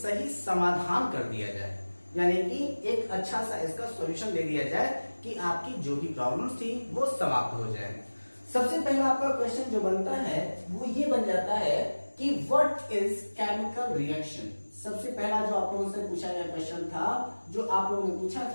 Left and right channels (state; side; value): inverted; both; correlation -1.00